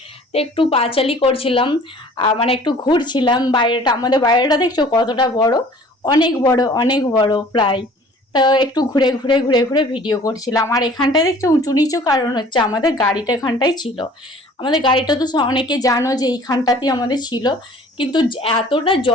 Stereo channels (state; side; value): normal; both; correlation 0.50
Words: তো একটু পাঁচালি করছিলাম, মানে একটু ঘুরছিলাম বাইরেটা, আমাদের বাইরেটা দেখছো কতটা বড়, অনেক বড় অনেক বড় প্রায়। তো একটু ঘুরে ঘুরে ঘুরে ঘুরে ভিডিও করছিলাম। আর এখানটায় দেখছো উঁচু নিচু, কারণ হচ্ছে আমাদের গাড়িটা এখানটাই ছিল। আমাদের গাড়িটা তো অনেকে জানো যে এইখানটাতেই আমাদের ছিল, কিন্তু এতটা